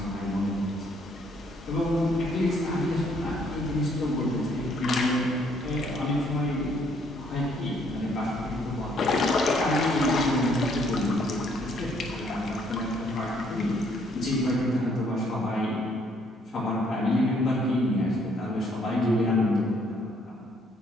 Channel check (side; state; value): both; normal; correlation 0.67